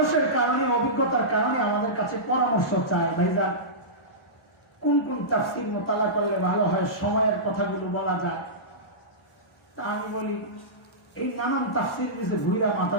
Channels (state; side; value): normal; both; correlation -0.17